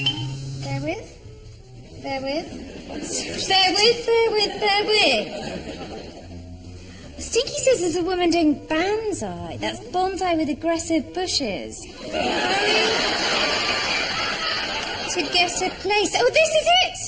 bear with. Stinky says there's a woman doing bonsai. That's bonsai with aggressive bushes. To get a place. Oh, this is it!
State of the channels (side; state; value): both; identical; correlation 1.00